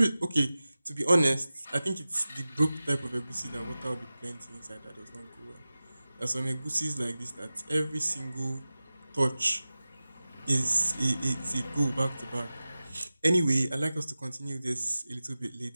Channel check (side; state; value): both; inverted; correlation -0.95